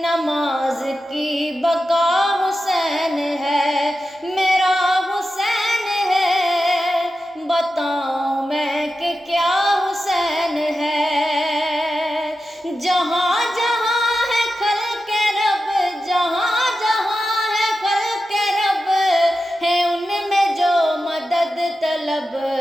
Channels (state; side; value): normal; both; correlation 0.91